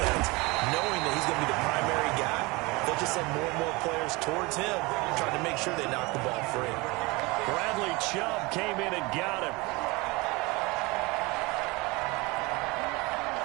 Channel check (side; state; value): left; quieter; 24.6 dB